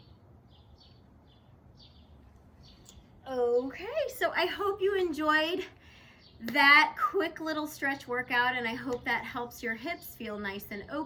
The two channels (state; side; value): identical; both; correlation 1.00